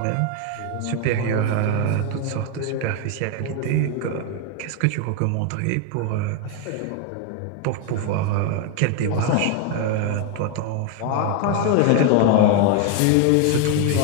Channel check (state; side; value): different; both; correlation 0.01